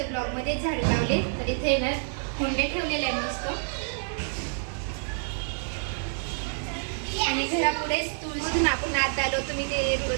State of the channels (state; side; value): silent; left; 59 dB below the other